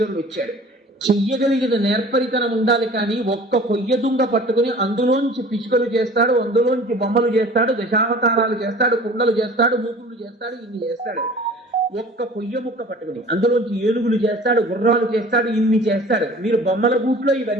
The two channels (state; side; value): normal; both; correlation 0.45